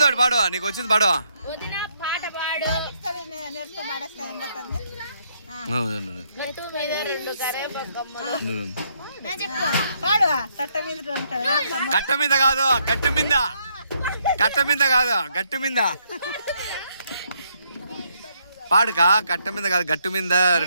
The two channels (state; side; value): inverted; both; correlation -0.73